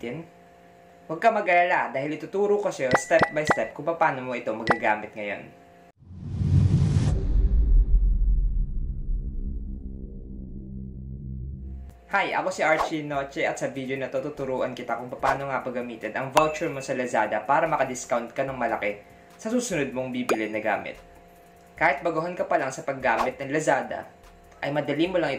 Huwag ka mag-alala dahil ituturo ko sa'yo step by step kung paano mo ito magagamit ngayon. Hi, ako si Archie Noche at sa video na to tuturuan kita kung paano nga paggamitin ang voucher mo sa Lazada para maka-discount ka ng malaki sa susunod mong bibili na gamit. Kahit baguhan ka pa lang sa paggamit ng Lazada, ay madali mo lang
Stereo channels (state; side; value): identical; both; correlation 1.00